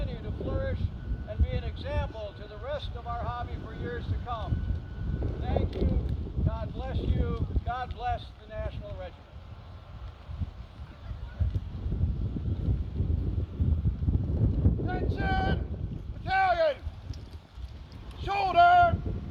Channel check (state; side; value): identical; both; correlation 1.00